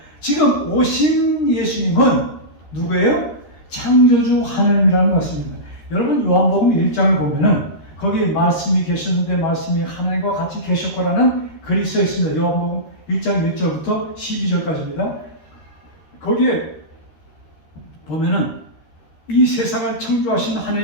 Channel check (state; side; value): late; right; 13 ms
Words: 지금 오신 예수님은 누구예요? 창조주 하나님이라는 것입니다. 여러분 요한복음 1장을 보면은 거기 말씀이 계셨는데 말씀이 하나님과 같이 계셨고라는 글이 써 있습니다. 요한복음 1장 1절부터 12절까지입니다. 거기에 보면은 이 세상을 창조하신